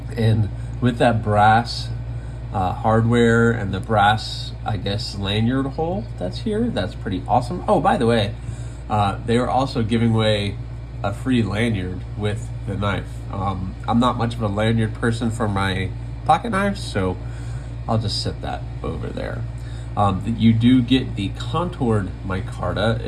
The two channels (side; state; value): both; identical; correlation 1.00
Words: And with that brass hardware and the brass, I guess, lanyard hole that's here, that's pretty awesome. Oh, by the way, they were also giving away a free lanyard with the knife. I'm not much of a lanyard person for my pocket knives, so I'll just set that over there. You do get the contoured micarta.